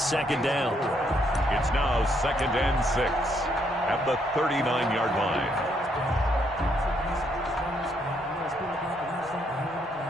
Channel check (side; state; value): both; normal; correlation 0.73